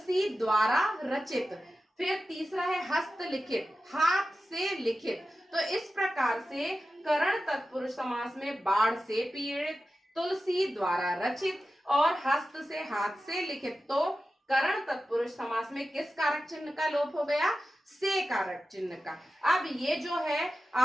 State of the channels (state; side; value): normal; both; correlation 0.93